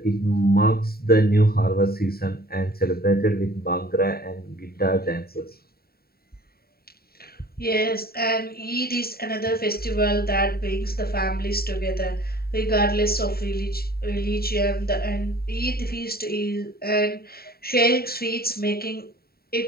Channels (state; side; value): late; right; 0.45 ms